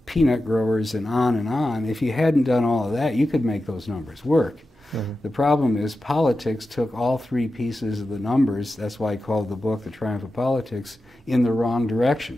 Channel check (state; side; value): normal; both; correlation 0.92